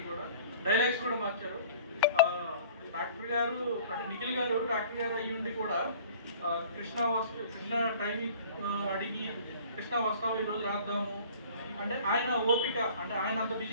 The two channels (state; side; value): inverted; both; correlation -0.48